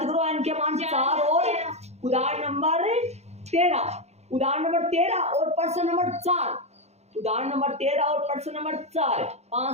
करो, एन के मान 4 और उदाहरण नंबर 13, उदाहरण नंबर 13 और पर्सन नंबर 4, उदाहरण नंबर 13 और पर्सन नंबर 4,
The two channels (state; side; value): late; left; 0.31 ms